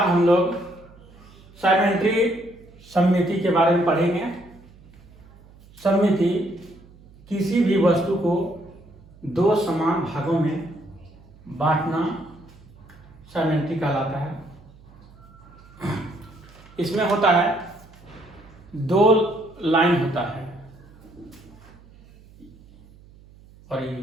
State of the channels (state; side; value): noise; right; hum, 24 dB below the sound